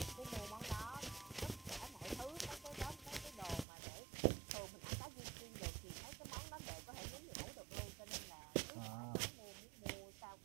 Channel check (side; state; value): left; drops out; at 3.7 s